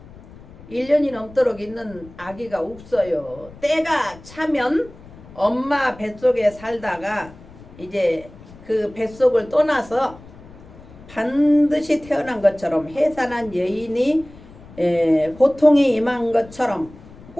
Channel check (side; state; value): left; noise; rumble, 20 dB below the sound